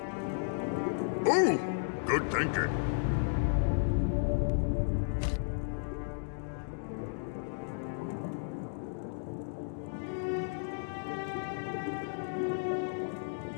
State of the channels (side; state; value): right; silent; digital silence